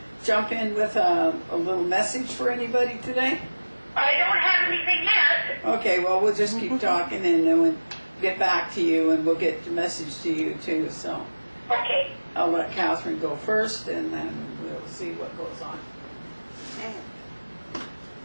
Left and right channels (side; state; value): both; inverted; correlation -1.00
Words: jump in with a little message for anybody today? I don't have anything yet. Okay, well, we'll just keep talking and then we'll get back to you and we'll get the message to you too. So Okay. I'll let Katharine go first and then we'll see what goes on. Okay.